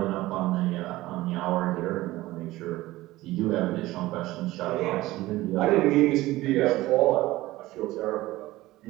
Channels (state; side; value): quieter; left; 17.8 dB